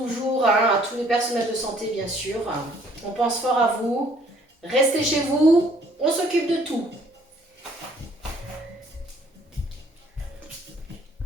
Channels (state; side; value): normal; both; correlation 0.60